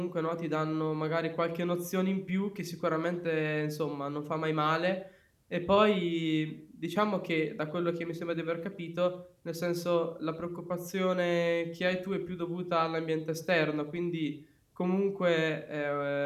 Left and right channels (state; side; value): identical; both; correlation 1.00